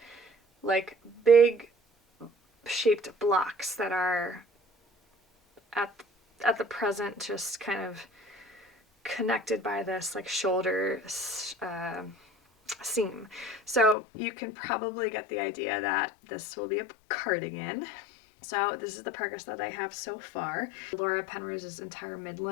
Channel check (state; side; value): drops out; right; at 14.0 s